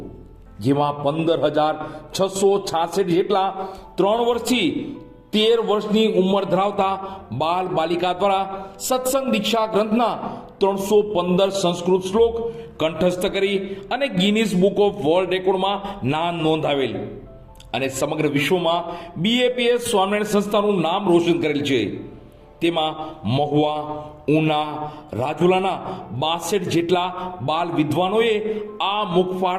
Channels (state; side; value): identical; both; correlation 1.00